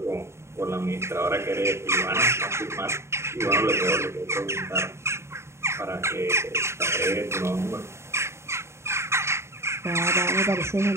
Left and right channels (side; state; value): left; late; 0.13 ms